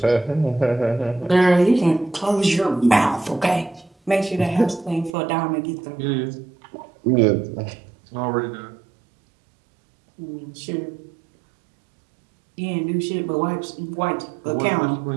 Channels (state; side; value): drops out; left; at 5.2 s